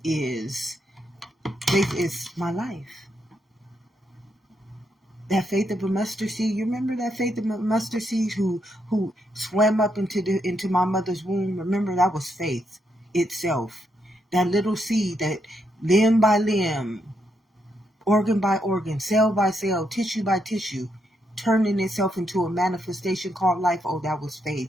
is my life. That faith of a mustard seed. You remember that faith of a mustard seed who swam up into my mother's womb? Remember, that was faith itself. That little seed that limb by limb, organ by organ, cell by cell, tissue by tissue, turning itself into a manifestation called life. Oh, that was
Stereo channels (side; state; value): both; normal; correlation 0.79